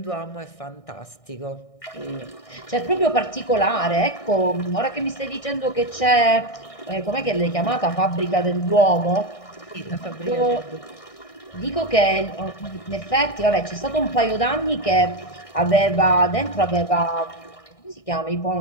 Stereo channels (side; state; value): right; late; 1.6 ms